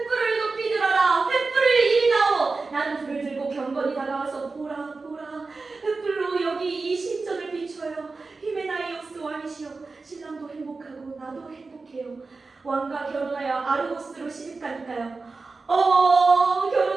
높이 들어라. 횃불을 이리 나오. 나는 불을 들고 경건히 다가와서 보라 보라. 횃불로 여기 이 신전을 비춰요. 히메나이오스 왕이시여. 신랑도 행복하고 나도 행복해요. 왕과 결혼하여 아르고스로 시집가니까요.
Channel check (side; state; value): left; quieter; 4.0 dB